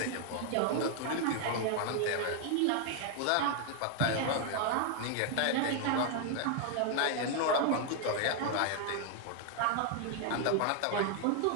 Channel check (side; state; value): both; different; correlation 0.00